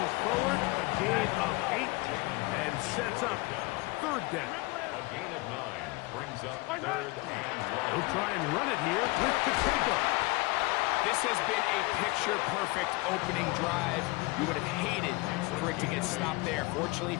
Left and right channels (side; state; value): right; quieter; 24.2 dB